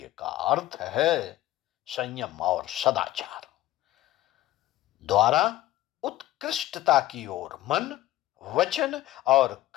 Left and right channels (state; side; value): quieter; right; 15.3 dB